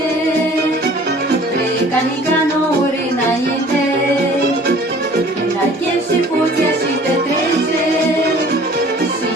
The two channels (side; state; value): both; normal; correlation 0.50